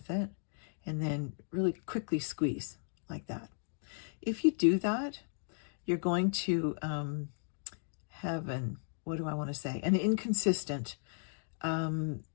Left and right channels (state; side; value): silent; right; digital silence